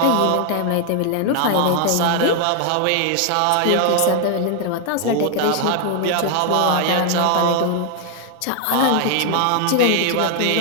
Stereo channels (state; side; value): different; both; correlation 0.00